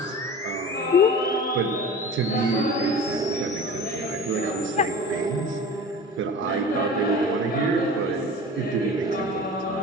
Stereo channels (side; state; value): both; normal; correlation 0.37